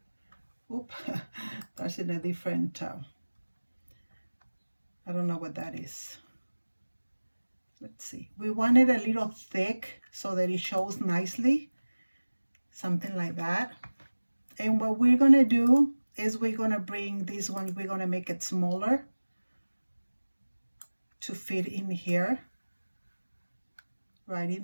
Oop, that's in a different, I don't know what that is. Let's see. We want it a little thick so that it shows nicely, something like that. And what we're gonna do is we're gonna bring this one, we're gonna make it smaller to fit in here, right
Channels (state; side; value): inverted; both; correlation -1.00